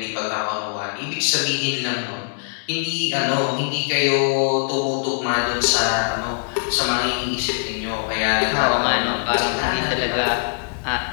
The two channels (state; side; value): silent; right; digital silence